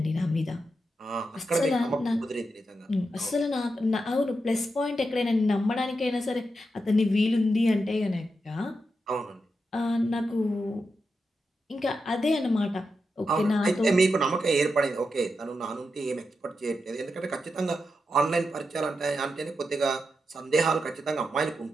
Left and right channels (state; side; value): normal; both; correlation 0.87